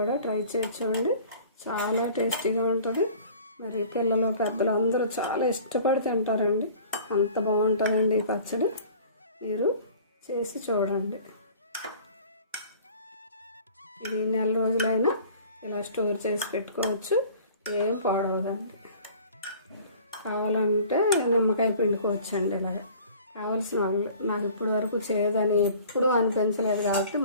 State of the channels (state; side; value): inverted; both; correlation -0.47